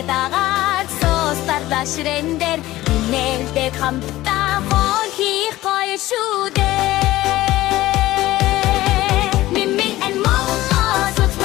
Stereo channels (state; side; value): quieter; right; 16.5 dB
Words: дагаад соостарда ширэндэр нэлдэг хамтдаа хол хийх гоё шүү дээ.